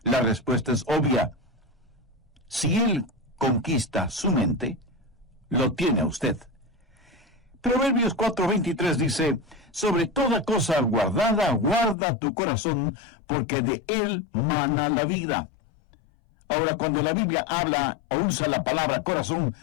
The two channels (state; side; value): drops out; right; at 12.0 s